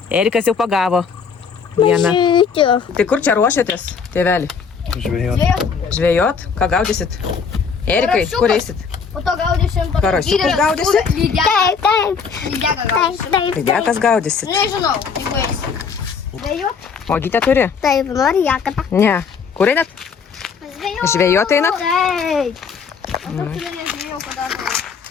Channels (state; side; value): quieter; right; 5.9 dB